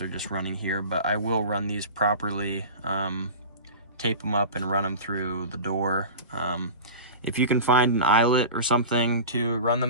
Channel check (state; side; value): inverted; both; correlation -0.33